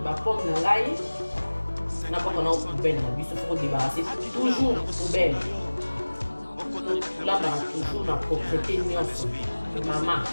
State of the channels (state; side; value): inverted; both; correlation -1.00